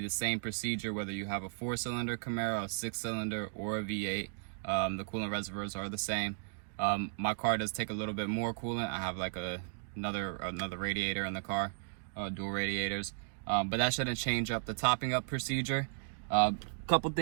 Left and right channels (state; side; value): silent; left; digital silence